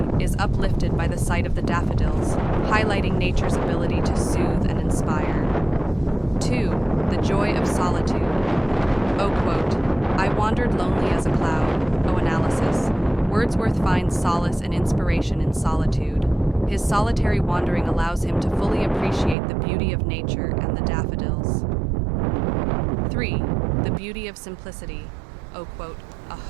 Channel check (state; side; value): drops out; left; at 19.4 s